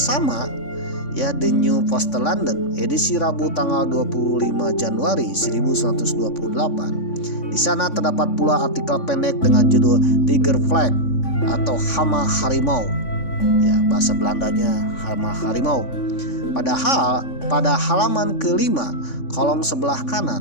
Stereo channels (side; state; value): right; late; 3.5 ms